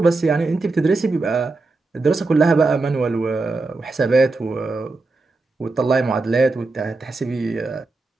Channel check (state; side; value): quieter; left; 3.5 dB